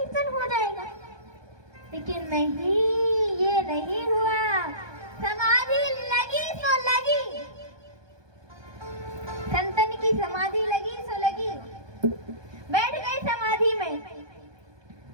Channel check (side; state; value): left; late; 1.2 ms